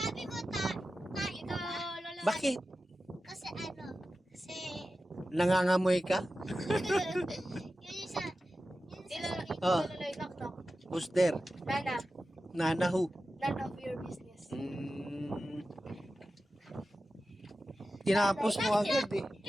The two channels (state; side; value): normal; both; correlation 0.93